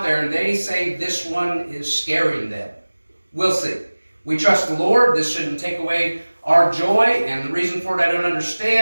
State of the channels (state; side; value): inverted; both; correlation -1.00